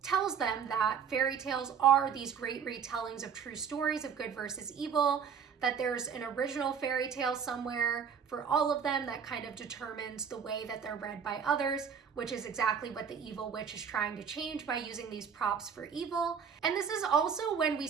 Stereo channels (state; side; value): quieter; left; 7.1 dB